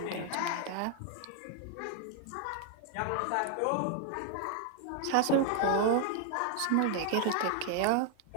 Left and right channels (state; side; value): different; both; correlation 0.00